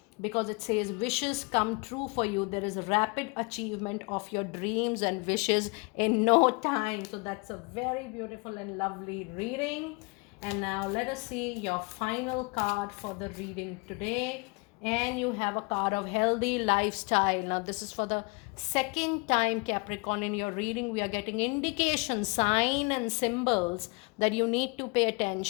because it says wishes come true for you. There is a rapid achievement of your dreams and wishes in no time. So that's a very beautiful and lovely reading. And now let us see your final card for the reading today. And you have a card of healthy lifestyle. Now this is for the second time, Capricorn. In your reading we are getting indication, sign and symbols that you need to pay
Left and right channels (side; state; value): right; quieter; 29.6 dB